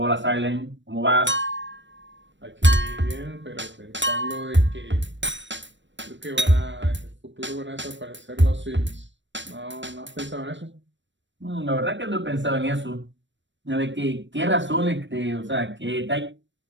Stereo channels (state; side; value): late; left; 0.53 ms